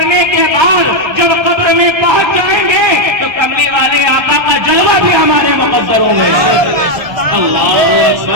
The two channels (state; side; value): late; left; 1.3 ms